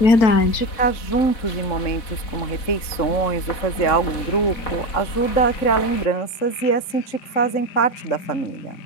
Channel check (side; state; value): right; late; 3.7 ms